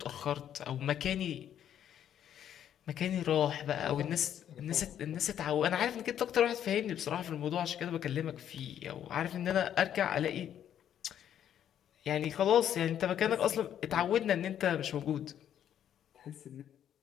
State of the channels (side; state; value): right; quieter; 10.0 dB